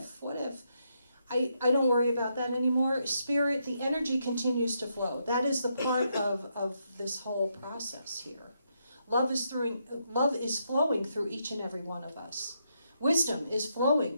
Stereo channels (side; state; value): both; inverted; correlation -0.79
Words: I don't worry about that anymore. Spirit, the energy continues to flow. That is the part of this whole process here. Love is flowing through each and every one of us. Wisdom is flowing